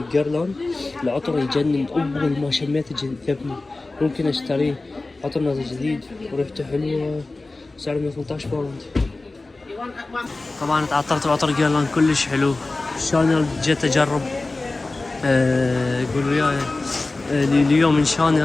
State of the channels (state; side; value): quieter; right; 3.2 dB